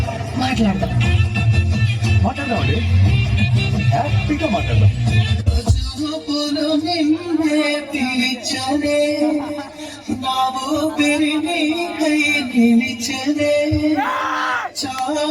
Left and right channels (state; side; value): identical; both; correlation 1.00